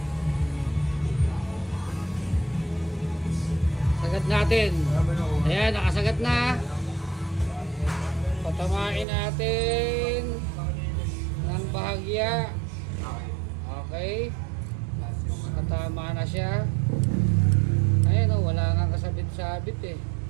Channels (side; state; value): left; drops out; at 9.1 s